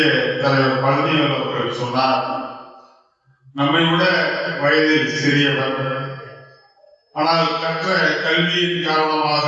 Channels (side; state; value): both; identical; correlation 1.00